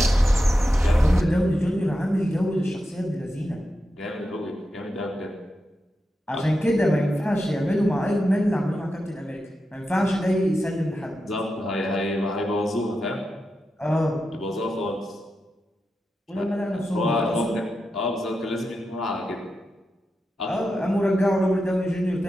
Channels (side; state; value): both; normal; correlation 0.89